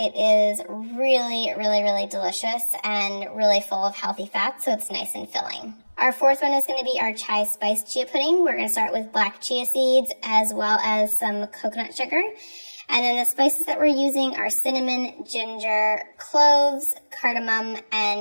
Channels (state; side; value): inverted; both; correlation -1.00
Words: is really, really, really delicious and really full of healthy fats, so it's nice and filling. Our fourth one is going to be our chai spice chia pudding. We're going to start with black chia seeds as well as some coconut sugar. And then the spices that we're using are cinnamon, ginger, cloves, cardamom,